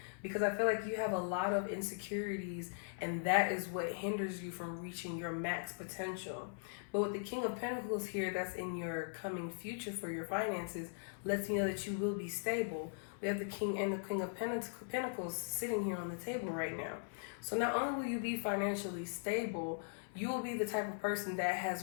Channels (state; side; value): silent; right; 51 dB below the other